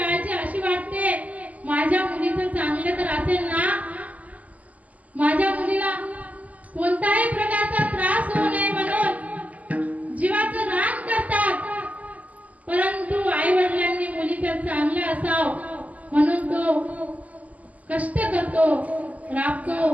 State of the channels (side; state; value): left; late; 0.074 ms